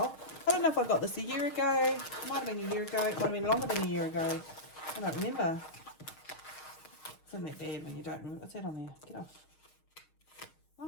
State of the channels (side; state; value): right; late; 6.4 ms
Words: I don't know if I got this a year ago. It might have been a year ago. It might have been longer than a year ago. I don't remember. Isn't that bad when you don't remember? What's that on there? Get off.